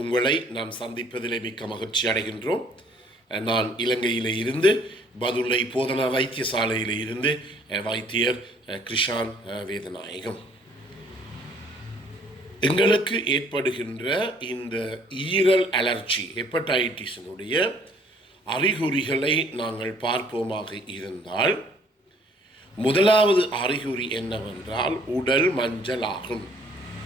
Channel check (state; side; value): normal; both; correlation 0.59